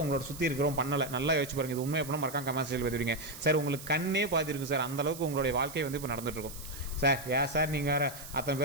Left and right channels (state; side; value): noise; right; hiss, 13 dB below the sound